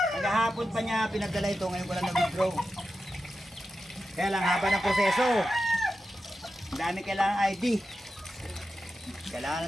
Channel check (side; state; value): both; normal; correlation 0.91